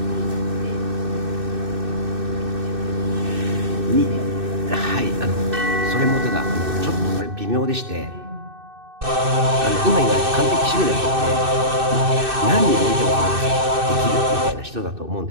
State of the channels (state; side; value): late; left; 2.6 ms